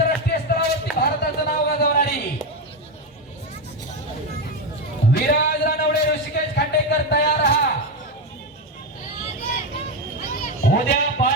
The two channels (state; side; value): normal; both; correlation 0.11